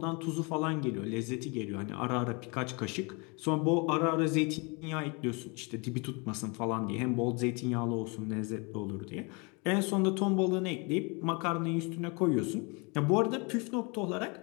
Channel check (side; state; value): right; quieter; 30.8 dB